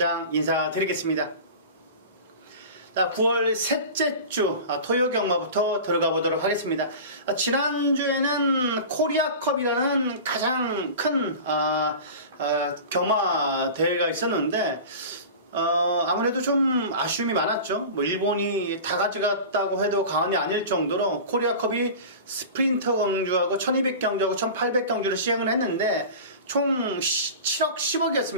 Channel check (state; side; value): inverted; both; correlation -0.34